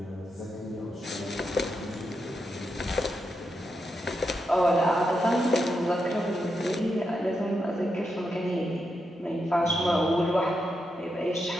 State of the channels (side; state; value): both; normal; correlation 0.85